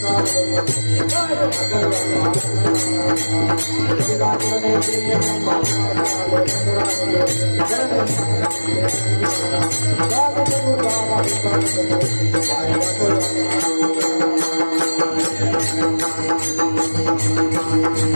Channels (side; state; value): both; inverted; correlation -1.00